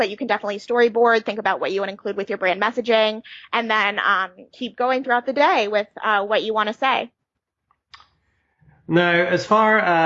you can definitely storyboard, think about what you want to include with your brand messaging, and then keep going throughout the day with what you want to say. Now, as far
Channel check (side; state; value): both; identical; correlation 1.00